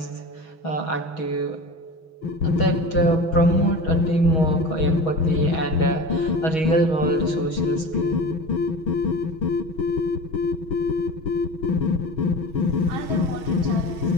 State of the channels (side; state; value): right; late; 6.3 ms